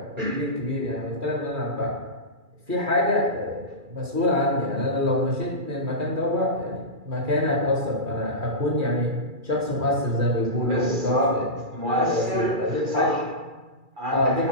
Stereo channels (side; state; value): left; late; 2.3 ms